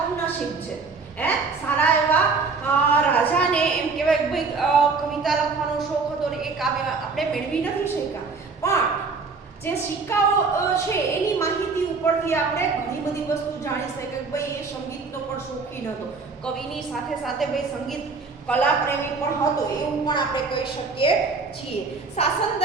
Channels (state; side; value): quieter; left; 4.5 dB